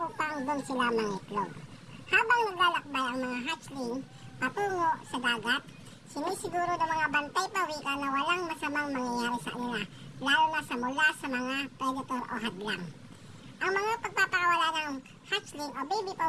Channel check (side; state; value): both; identical; correlation 1.00